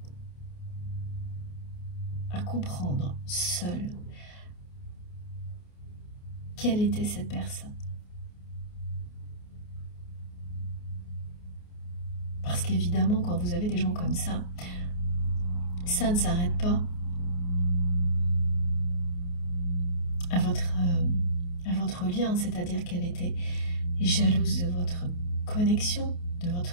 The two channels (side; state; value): right; late; 28 ms